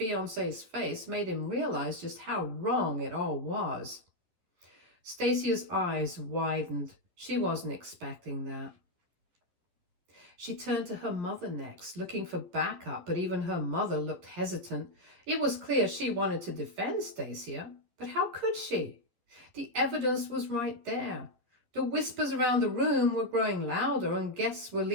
face made him realize just how wrong it all was. Stacia's eyes widened. She wasn't expecting that. She turned to her mother next, looking for backup, but even her mother looked hesitant. It was clear she wanted to defend Stacia, but how could she? The evidence was right there. The whispers around the room were growing louder, and guests were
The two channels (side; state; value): left; late; 11 ms